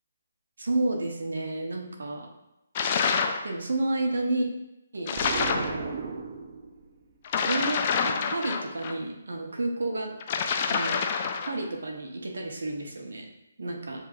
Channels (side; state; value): both; inverted; correlation -0.72